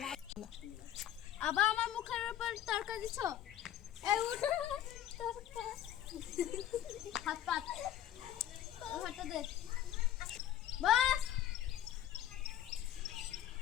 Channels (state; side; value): quieter; right; 11.7 dB